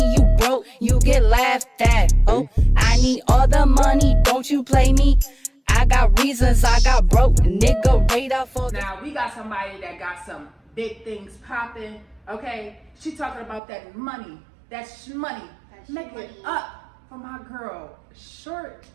you broke, you get laughed at, ho? I need all the money, don't you play me? I got reasons, I got broke, nigga radar for the... Now, we got somebody that got some big things popping, okay? She talking about that money, that shmoney. Make it up for my girl, Short.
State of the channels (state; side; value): drops out; left; at 13.6 s